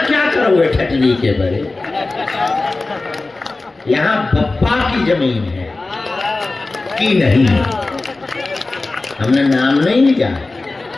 क्या करोगे ठटली के बड़े? यहां बप्पा की जमीन है कि नहीं? हमने नाम नहीं लिया है।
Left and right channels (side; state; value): right; quieter; 3.3 dB